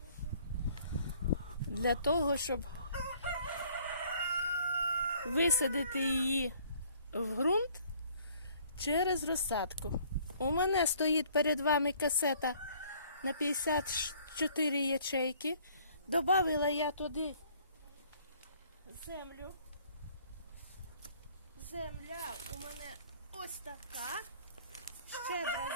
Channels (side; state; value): both; inverted; correlation -0.59